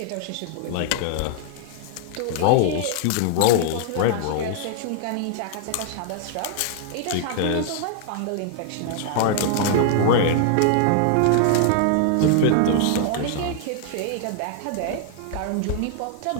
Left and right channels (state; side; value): different; both; correlation 0.00